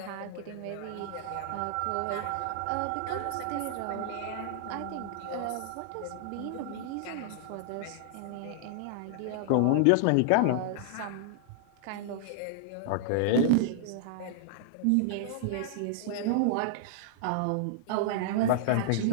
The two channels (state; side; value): different; both; correlation -0.01